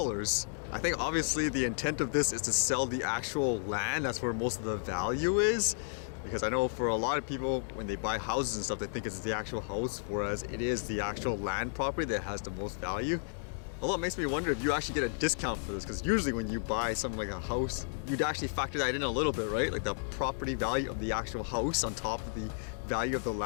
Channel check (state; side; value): silent; right; digital silence